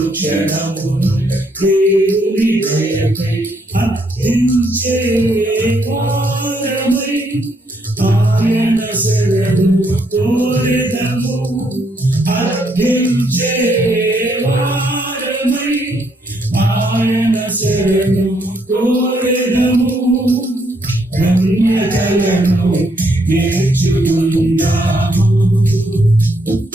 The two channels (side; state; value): both; normal; correlation 0.73